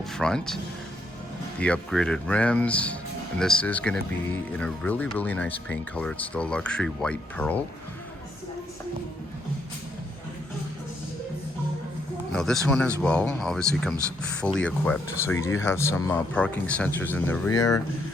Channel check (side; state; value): both; normal; correlation 0.74